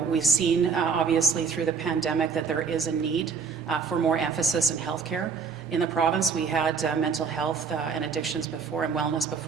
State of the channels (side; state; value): left; quieter; 5.6 dB